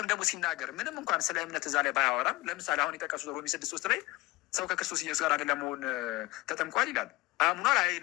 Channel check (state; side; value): quieter; right; 20.6 dB